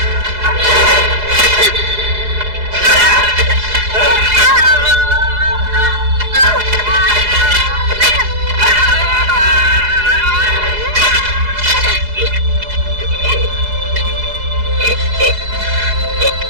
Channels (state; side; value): late; left; 4.8 ms